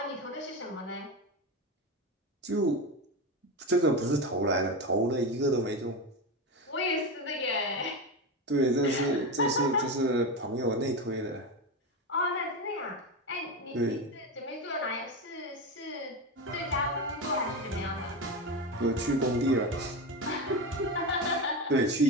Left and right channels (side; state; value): both; normal; correlation 0.18